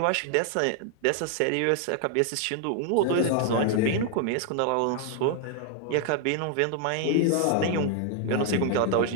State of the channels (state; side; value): different; both; correlation 0.00